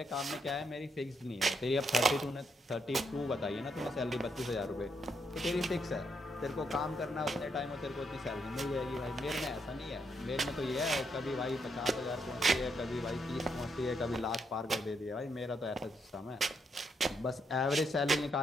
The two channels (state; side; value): normal; both; correlation 0.77